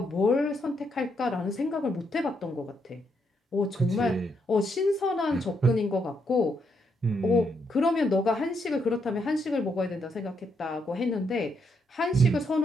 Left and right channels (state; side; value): normal; both; correlation 0.77